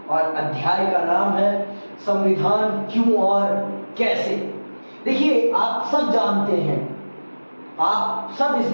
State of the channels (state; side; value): inverted; both; correlation -1.00